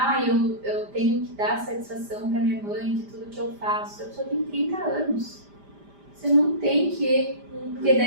eu tenho que dar satisfação para minha mãe de tudo que eu faço. A pessoa tem 30 anos. Você não tem que, porque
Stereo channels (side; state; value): left; late; 5.0 ms